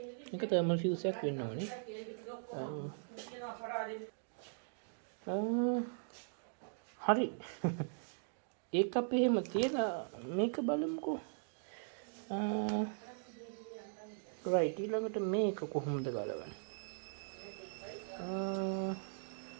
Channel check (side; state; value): left; silent; digital silence